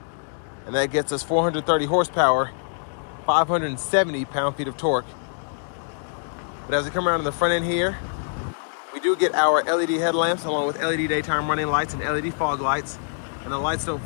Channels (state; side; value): silent; right; digital silence